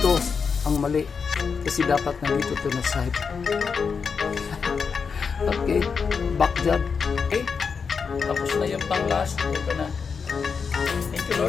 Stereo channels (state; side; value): quieter; right; 5.7 dB